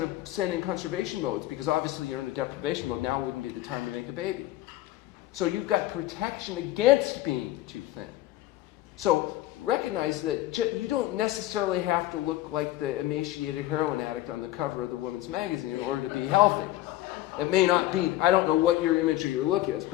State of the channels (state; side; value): quieter; right; 15.5 dB